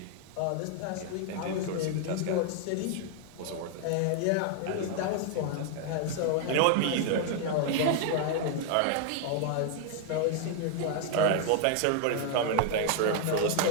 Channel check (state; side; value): different; both; correlation 0.00